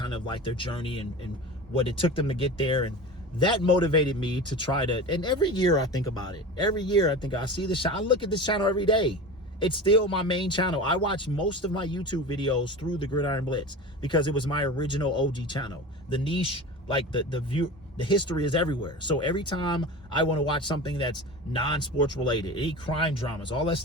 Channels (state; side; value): normal; both; correlation 0.32